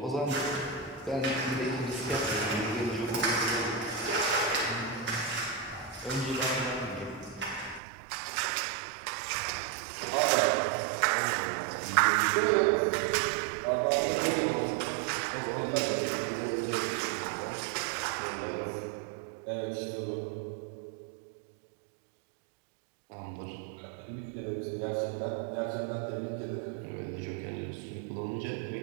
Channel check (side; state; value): left; drops out; at 7.8 s